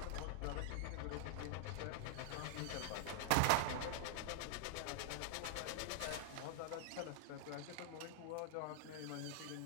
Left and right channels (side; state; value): both; different; correlation 0.00